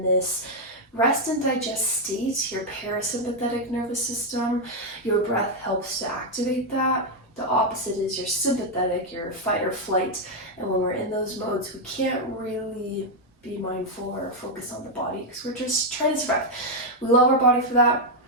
this rest and digest state, your parasympathetic nervous system. Your breath helps to activate that. The opposite is your sympathetic, your fight or flight. And when we're in those modes, we can't really be mindful or focus on the body because we're just trying to survive. We love our body for that,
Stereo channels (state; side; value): normal; both; correlation 0.01